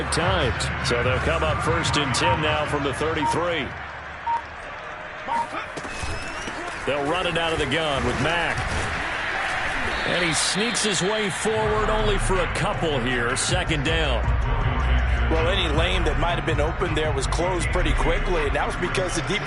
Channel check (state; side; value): identical; both; correlation 1.00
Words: times. So they'll come up 1st and 10 now from the 33. They'll run it out of the gun with Mack. And he sneaks his way forward only for a couple here. 2nd down. Well, any lane that might have been open there was closed pretty quickly, and that was because the